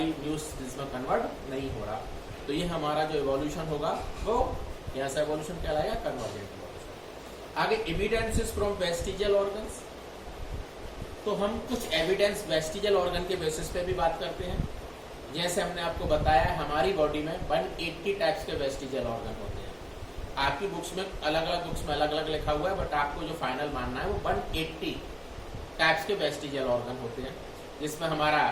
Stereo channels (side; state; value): both; identical; correlation 1.00